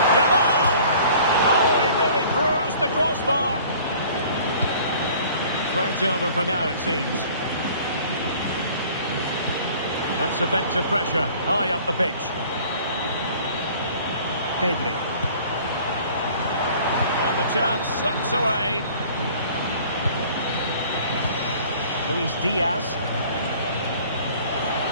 Yamal! Oh, he really threat over for now, it seems. That's effective pressure, high up the pitch. Pedri. And the chance slips away. Luis Diaz.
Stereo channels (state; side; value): inverted; both; correlation -0.50